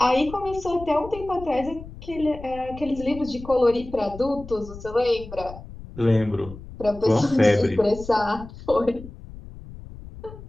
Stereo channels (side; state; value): left; noise; rumble, 15 dB below the sound